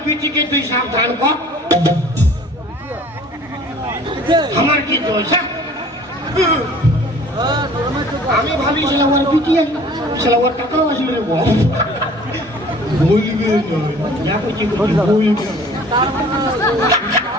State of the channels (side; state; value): both; normal; correlation 0.49